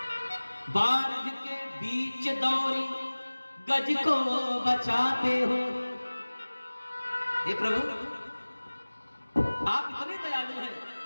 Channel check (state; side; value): inverted; both; correlation -1.00